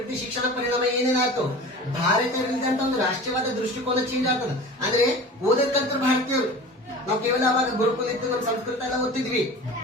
ಶಿಕ್ಷಣ ಪರಿಣಾಮ ಏನೇನಾಯ್ತು? ಭಾರತೀಯರಿದ್ದಂತ ಒಂದು ರಾಷ್ಟ್ರೀಯವಾದ ದೃಷ್ಟಿಕೋನ ಚೇಂಜ್ ಆಗ್ತದೆ. ಅಂದ್ರೆ ಓದಕ್ಕಂತ ಭಾರತೀಯರು, ನಾವು ಕೇವಲ ಅವಾಗ ಗುರುಕುಲ ಇತ್ತು, ನಮ್ಮ ಸಂಸ್ಕೃತ ಎಲ್ಲ ಓದ್ತಿದ್ವಿ,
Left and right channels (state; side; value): normal; both; correlation 0.37